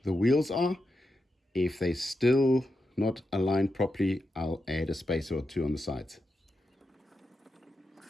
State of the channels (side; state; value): both; normal; correlation 0.87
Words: the wheels are. If they're still not aligned properly, I'll add a spacer or two on the sides.